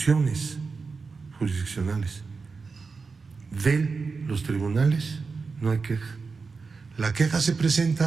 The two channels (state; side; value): quieter; left; 4.6 dB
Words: jurisdiccionales de los tribunales no hay queja. La queja se